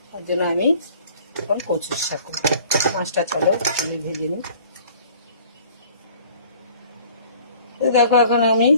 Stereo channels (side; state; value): both; inverted; correlation -0.51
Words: তার জন্য আমি এখন কচুর শাক করবো। মাছটা চলো আমি ভেজে নিই। দেখো এখন আমি